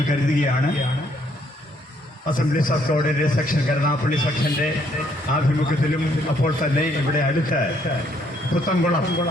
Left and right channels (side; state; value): both; normal; correlation 0.68